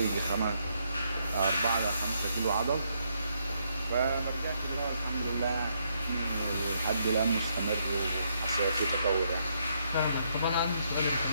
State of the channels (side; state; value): both; inverted; correlation -0.75